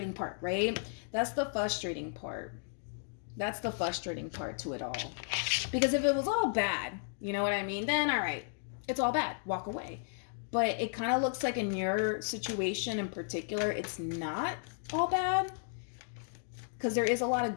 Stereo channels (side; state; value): right; silent; digital silence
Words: part, right? That's the frustrating part. That's the frustrating part to it all. Because if it was all bad, you know what I mean? Then, all right, it's all bad. Walk away. But it kind of looks like in your situation in particular, it's not all bad, because there is a lot of